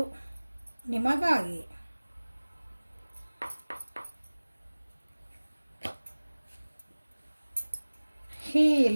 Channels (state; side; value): inverted; both; correlation -1.00